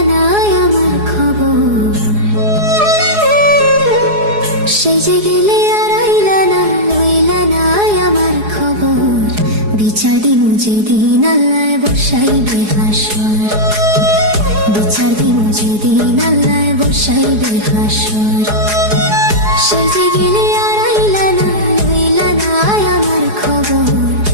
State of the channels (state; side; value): late; left; 4.8 ms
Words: না আমার খবর। সেজে গেলে আর আইলা না, লইলা না আমার খবর। বিচার দিমু যেদিন আল্লাহ বসাইবে হাসর, বিচার দিমু যেদিন আল্লাহ বসাইবে হাসর। সেজে গেলে আর আইলা না, লইলা না আমার খবর।